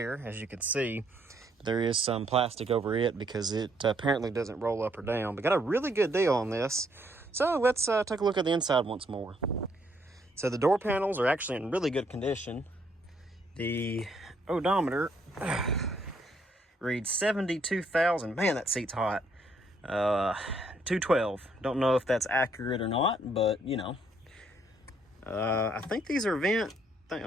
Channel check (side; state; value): both; normal; correlation 0.70